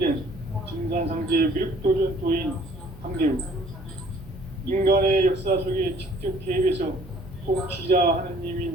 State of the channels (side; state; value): both; normal; correlation 0.56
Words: 증산상제 미륵도전 도인 강대우. 인간의 역사 속에 직접 개입해서 통치자